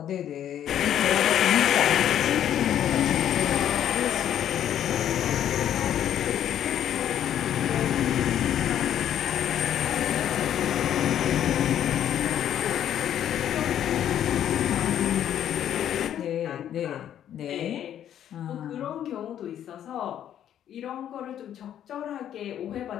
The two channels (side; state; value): right; quieter; 10.5 dB